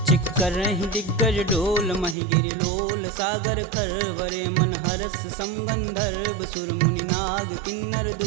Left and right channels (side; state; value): left; drops out; at 2.1 s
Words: चिक्करहि दिग्गज डोल, महि गिरि लोल सागर खरवरे। मन हरस समगंधर्व सुर मुनि नाग, किन्नर